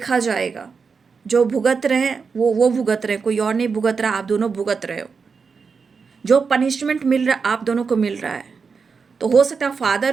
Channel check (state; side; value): quieter; left; 5.3 dB